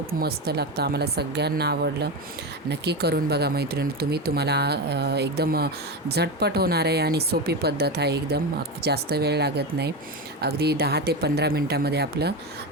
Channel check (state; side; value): normal; both; correlation 0.18